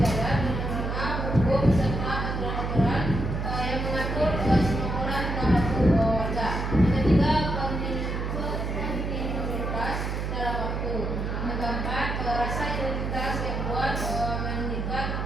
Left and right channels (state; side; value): noise; right; hum, 2 dB below the sound